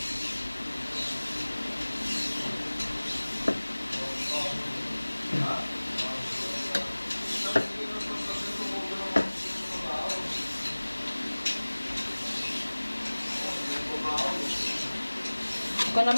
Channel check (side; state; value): both; inverted; correlation -1.00